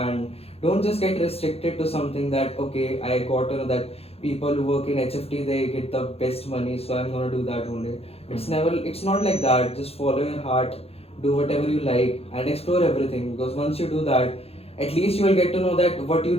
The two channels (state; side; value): late; right; 0.29 ms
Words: don't just get restricted to something that, okay, I got to know that people who work in HFT, they get the best money, so I'm gonna do that only. It's not like that. Just follow your heart, do whatever you like, and explore everything, because once you do that, at least you will get to know that what